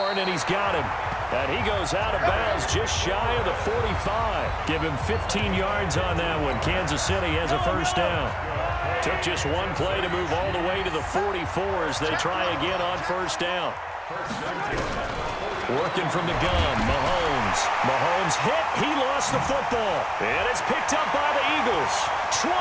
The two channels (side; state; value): both; identical; correlation 1.00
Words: and he's got him. And he goes out of bounds just shy of the 45. Give him 15 yards on that one. Kansas City has a first down. Took just one play to move all the way to the 44 as they try again on first down. Working from the gun, Mahomes. Mahomes hit. He lost the football. And it's picked up by the Eagles.